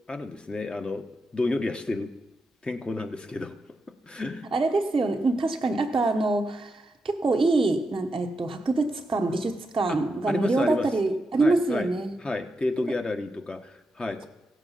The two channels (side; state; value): both; normal; correlation 0.86